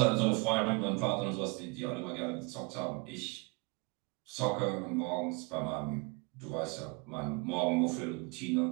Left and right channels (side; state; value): left; quieter; 29.4 dB